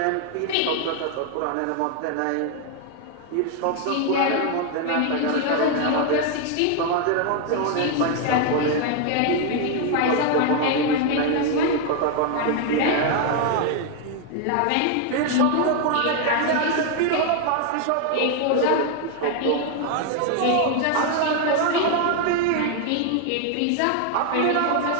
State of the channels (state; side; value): different; both; correlation 0.00